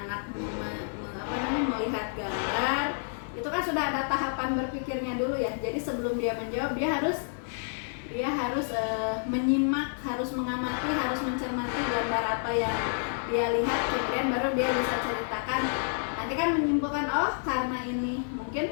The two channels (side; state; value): right; silent; digital silence